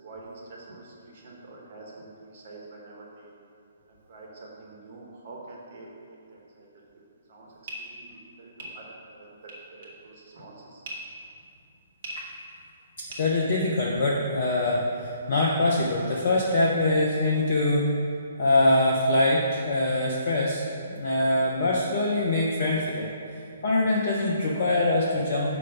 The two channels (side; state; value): both; inverted; correlation -0.68